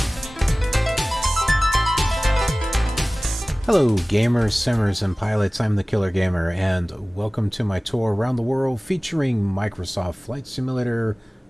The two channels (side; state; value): both; normal; correlation 0.98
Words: Hello gamers, simmers, and pilots, I'm the Killer Gamer, and welcome to my tour around the world featuring Microsoft Flight Simulator